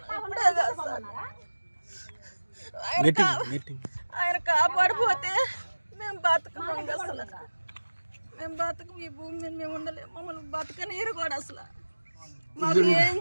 ఇప్పుడే కాదు సార్. ఆయన కాపాడిపోతే మేము బతకం. అసలు మేము బతకం. ఈ భూమి మీద మేము ఉండలేము. మమ్మల్ని బతకనీరు కూడా అసలు. మాకు ఏం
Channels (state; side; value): inverted; both; correlation -1.00